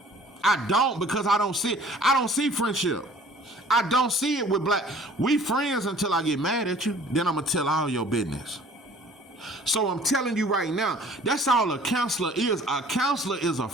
because I don't see it. I don't see friendship. I don't see it with black. We friends until I get mad at you. Then I'm going to tell all your business. So I'm telling you right now, that's all a counselor is. A counselor is a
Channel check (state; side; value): normal; both; correlation 0.52